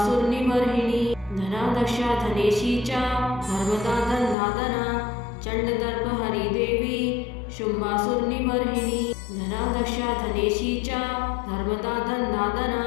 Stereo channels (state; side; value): drops out; right; at 4.4 s